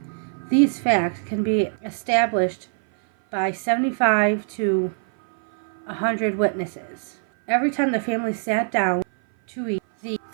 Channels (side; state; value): left; silent; 57 dB below the other